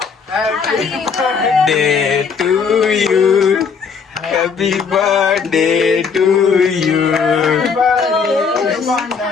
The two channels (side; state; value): right; quieter; 5.8 dB